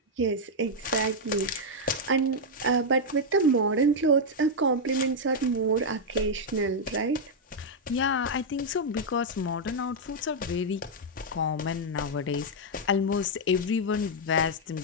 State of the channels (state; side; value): normal; both; correlation -0.02